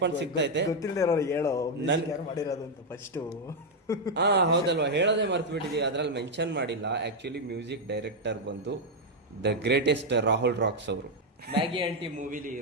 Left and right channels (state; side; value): normal; both; correlation 0.01